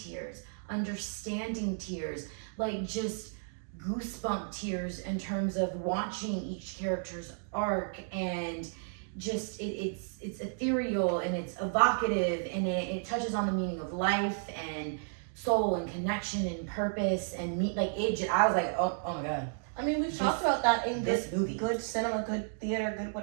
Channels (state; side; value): silent; left; digital silence